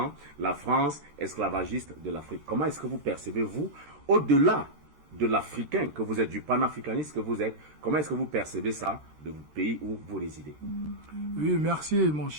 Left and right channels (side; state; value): left; late; 13 ms